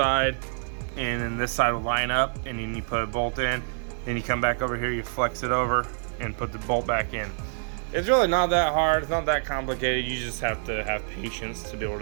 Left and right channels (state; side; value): silent; left; 60 dB below the other